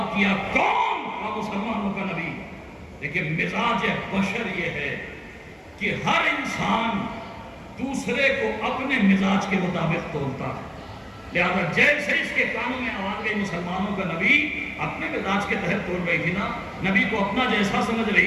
کیا، کون؟ مسلمانوں کا نبی۔ لیکن مزاج بشر یہ ہے کہ ہر انسان دوسرے کو اپنے مزاج کے مطابق تولتا ہے، لہذا جیسے اس کے کانوں میں آواز گئی مسلمانوں کا نبی، اپنے مزاج کے تحت تول رہی تھی نا، نبی کو اپنا جیسا سمجھ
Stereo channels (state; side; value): identical; both; correlation 1.00